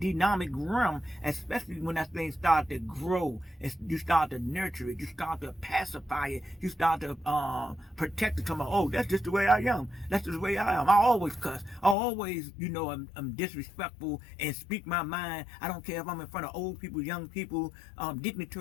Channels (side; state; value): right; drops out; at 12.0 s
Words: realm, especially when that thing start to grow, and you start to nurture it, you start to pacify it, you start to protect it. Oh, that's just the way I am, that's just the way I am. I always cuss, I always, I'm disrespectful and speak my mind. I don't care if I'm in front of old people, young people,